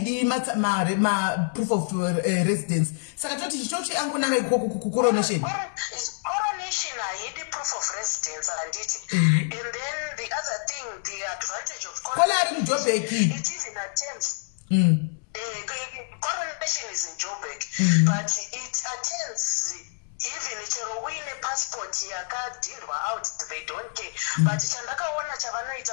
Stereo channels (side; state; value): right; silent; 60 dB below the other